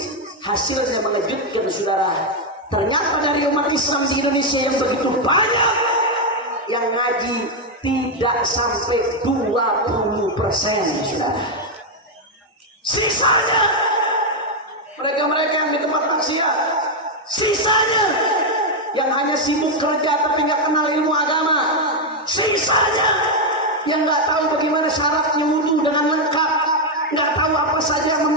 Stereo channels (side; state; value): both; normal; correlation 0.02